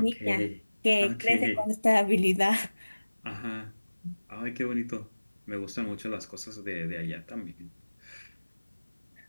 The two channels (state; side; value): inverted; both; correlation -1.00